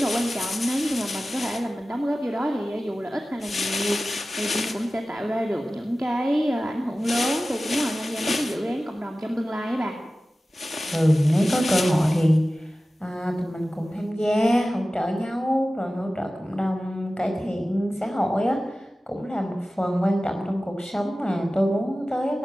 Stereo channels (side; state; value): both; normal; correlation 0.96